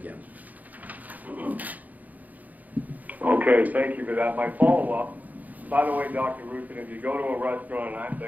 Okay, thank you for that. My follow-up, by the way, Dr. Roussin, if you go to a restaurant and I'm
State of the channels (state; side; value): late; left; 0.080 ms